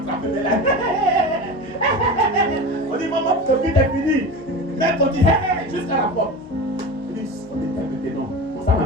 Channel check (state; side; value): normal; both; correlation 0.28